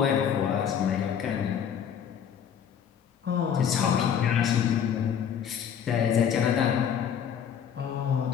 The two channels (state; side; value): quieter; right; 8.3 dB